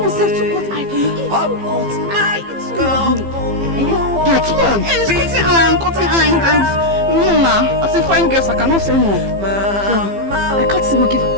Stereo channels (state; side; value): late; left; 15 ms